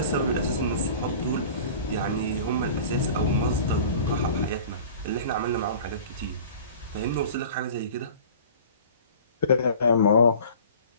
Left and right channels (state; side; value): inverted; both; correlation -0.43